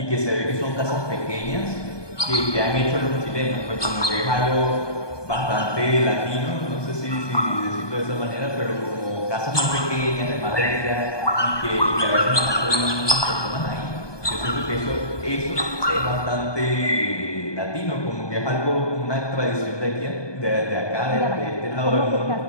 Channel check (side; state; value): right; late; 1.2 ms